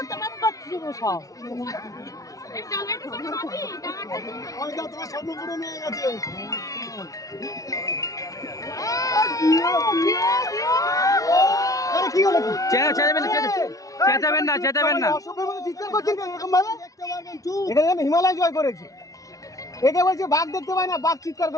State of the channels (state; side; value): late; right; 0.17 ms